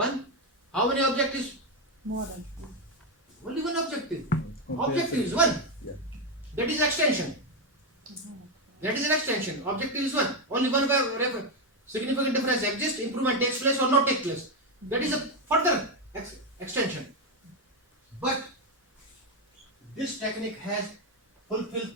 How many objectives? More than 2. Only one objective. Compare Objective is one. Yeah. That is extension. That is an extension. Objective is one. Only one way significant difference exists, improvement takes place or not take place. That is a further extension. But this technique has fulfilled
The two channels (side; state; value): both; normal; correlation 0.07